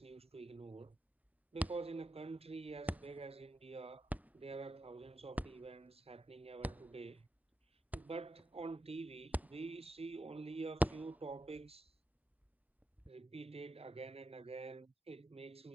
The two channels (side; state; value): both; normal; correlation 0.86